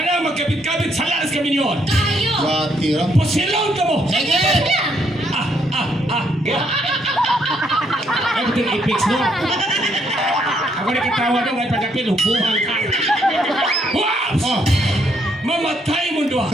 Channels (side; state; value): both; normal; correlation 0.72